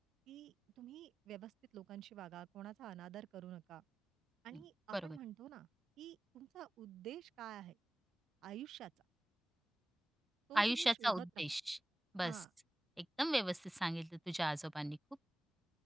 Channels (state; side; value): normal; both; correlation 0.96